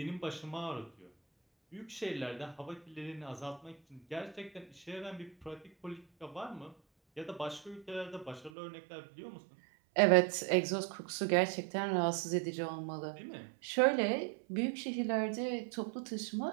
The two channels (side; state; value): left; drops out; at 8.5 s